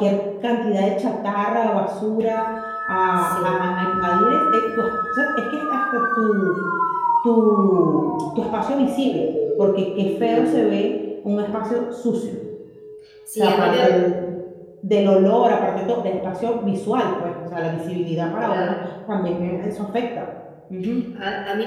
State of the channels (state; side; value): identical; both; correlation 1.00